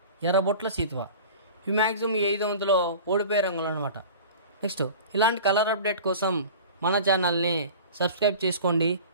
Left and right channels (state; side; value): inverted; both; correlation -0.38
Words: ఎర్రబొట్ల సీతువ. ఇవి మ్యాక్సిమం ఈ ఐదో వంతులో ఓడిపోయే రంగులు అనమాట. నెక్స్ట్ ఇలాంటి కలర్ అప్డేట్ కోసం మన ఛానల్ని సబ్స్క్రైబ్ చేసుకోండి,